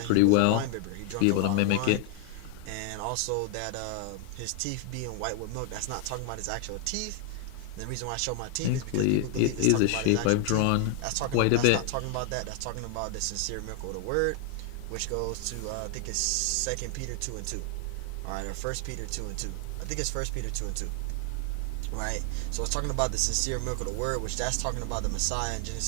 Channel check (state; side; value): different; both; correlation 0.00